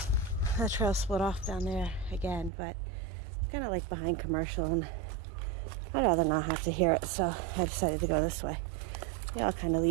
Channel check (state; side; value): drops out; left; at 2.5 s